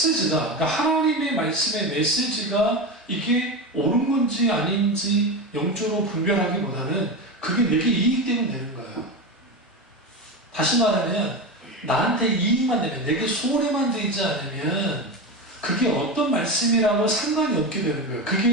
그러니까 하나님의 말씀의 메시지가 이게 옳은 건지 아닌지 영적으로 분별하기보다는 그게 내게 이익되면 되는 거예요. 다시 말하면 나한테 이익만 되면, 내게 손해만 되지 않으면 그게 어떤 말씀이라고 상관이 없게 되는 거예요.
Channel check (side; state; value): both; normal; correlation 0.20